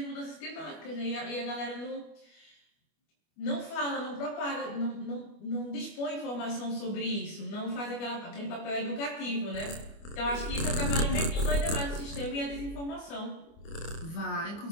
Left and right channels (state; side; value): late; right; 25 ms